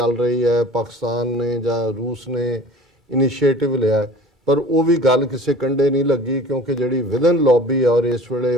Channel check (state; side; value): normal; both; correlation 0.44